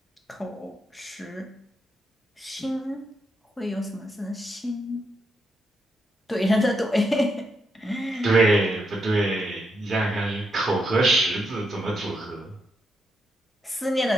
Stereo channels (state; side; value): normal; both; correlation 0.81